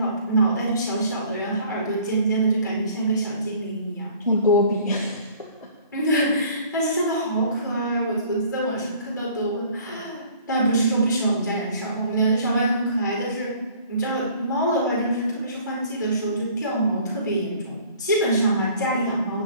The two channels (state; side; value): inverted; both; correlation -0.53